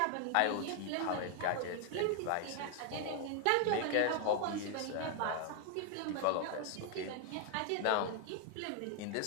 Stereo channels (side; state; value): both; different; correlation 0.00